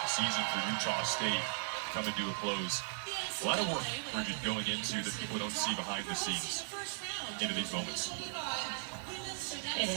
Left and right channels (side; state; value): left; silent; digital silence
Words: Season for Utah State coming to a close. A lot of work, Bridget, going into that people don't see behind the scenes into these moments. It